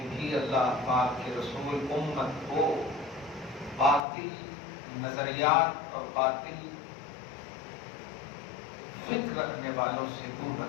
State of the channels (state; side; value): drops out; right; at 4.0 s